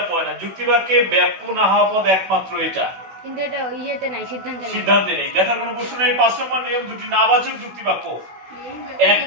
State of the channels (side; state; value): left; late; 16 ms